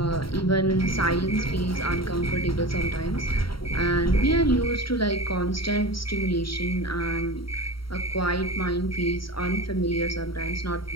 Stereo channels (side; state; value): right; late; 0.74 ms